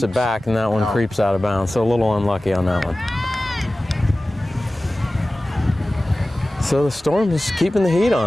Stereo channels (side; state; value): both; normal; correlation 0.97